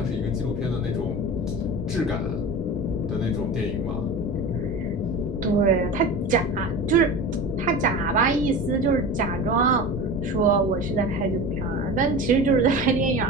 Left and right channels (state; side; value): normal; both; correlation 0.31